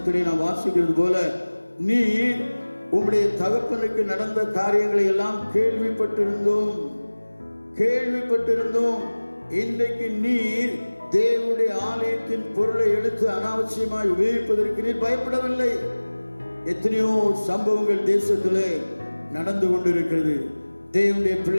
நாம் வாசிக்கிறது போல, நீ உம்முடைய தகப்பனுக்கு நடந்த காரியங்களை எல்லாம் கேள்விப்பட்டிருந்தோம். இன்றைக்கு நீர் தேவனுடைய ஆலயத்தின் பொருளை எடுத்து அனாவசியமாய் உபயோகிப்பதற்கு நீர் பயப்படவில்லை. எத்தனையோ சம்பவங்கள் தேசத்திலே நடந்து கொண்டிருக்கிறது. தேவனுடைய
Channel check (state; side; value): inverted; both; correlation -1.00